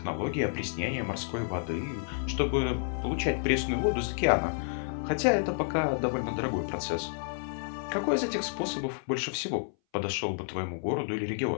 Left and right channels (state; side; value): silent; right; 57 dB below the other